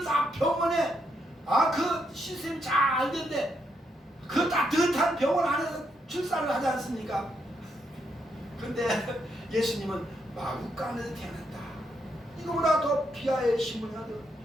다 병원에 그 시스템이 잘 됐는데 그 따뜻한 병원 안에서 출산을 하지 않습니까? 근데 예수님은 마구간에서 태어났다. 이거보다 더 비하의 신분이 어디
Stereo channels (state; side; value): normal; both; correlation 0.78